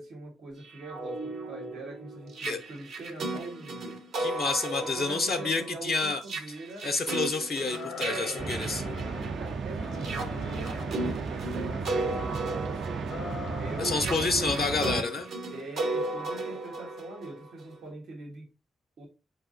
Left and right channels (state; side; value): normal; both; correlation 0.65